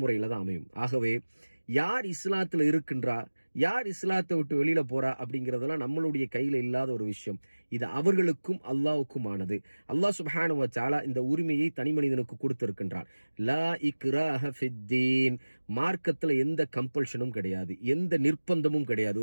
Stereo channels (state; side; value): inverted; both; correlation -1.00